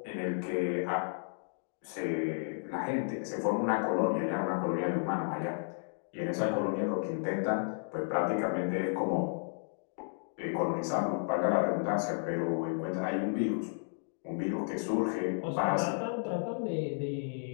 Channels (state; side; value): silent; right; digital silence